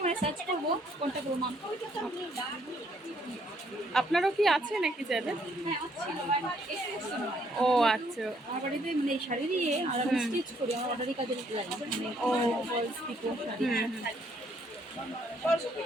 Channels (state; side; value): normal; both; correlation 0.68